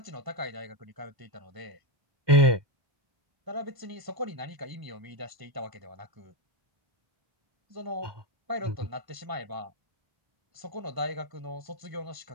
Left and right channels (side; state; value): left; late; 1.2 ms